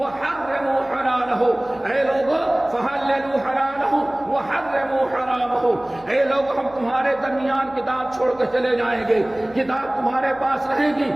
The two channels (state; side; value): noise; right; hum, 25 dB below the sound